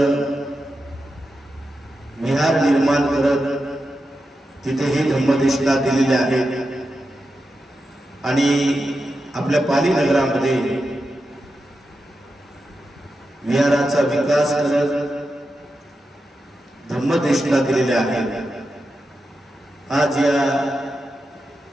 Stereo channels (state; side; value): normal; both; correlation 0.89